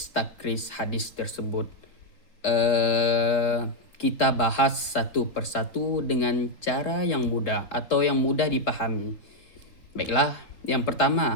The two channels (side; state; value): right; late; 3.8 ms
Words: takrij hadis tersebut. Kita bahas satu persatu dengan cara yang mudah atau yang mudah dipahami. Baiklah, yang